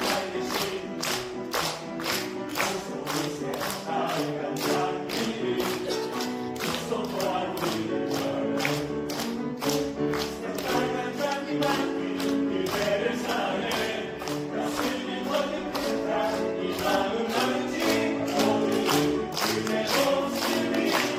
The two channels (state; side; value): identical; both; correlation 1.00